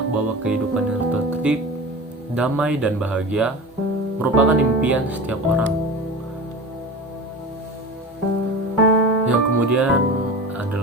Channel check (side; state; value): both; normal; correlation 0.31